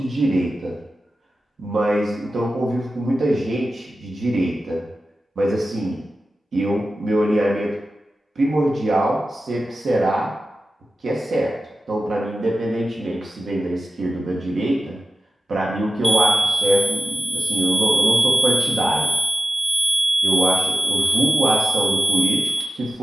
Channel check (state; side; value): normal; both; correlation 0.94